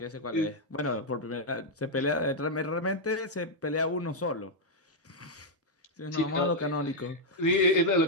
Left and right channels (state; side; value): normal; both; correlation -0.02